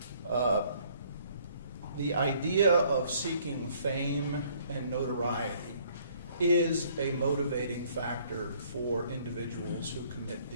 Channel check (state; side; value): inverted; both; correlation -0.61